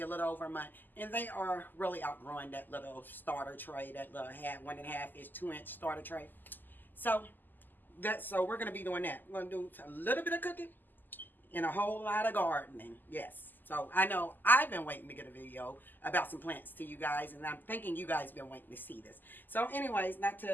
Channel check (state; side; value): late; right; 0.088 ms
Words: a little over a month, and they are really outgrowing that little starter tray, that little 1.5-inch, 2-inch starter tray. So we're gonna be doing that. We're gonna do a little bit of cooking and a whole lot of gardening. Yes. So I know I've been waiting to get a video about some plants to you guys, and I'm thinking you guys been waiting to see this. So anyways, not